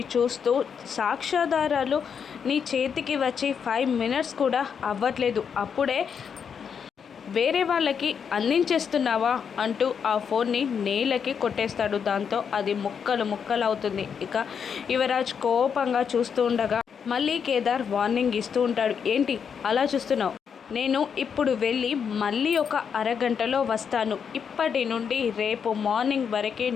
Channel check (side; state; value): right; quieter; 7.0 dB